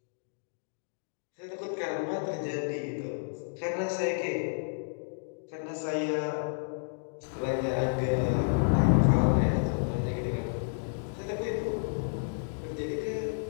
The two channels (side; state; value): right; silent; digital silence